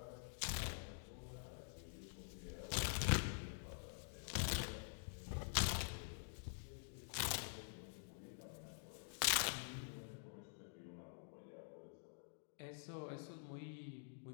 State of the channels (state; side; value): silent; right; digital silence